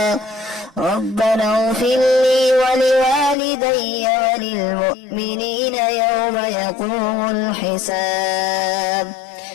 ربنا اغفر لي ولوالدي وللمؤمنين يوم يقوم الحساب.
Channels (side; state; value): right; drops out; at 3.4 s